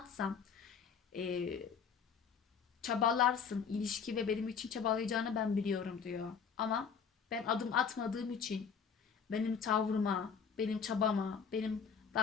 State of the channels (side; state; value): right; quieter; 6.4 dB